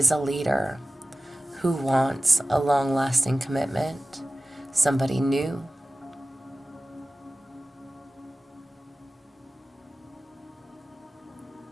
a leader, who wants a long-lasting commitment, somebody new.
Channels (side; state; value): both; normal; correlation 0.96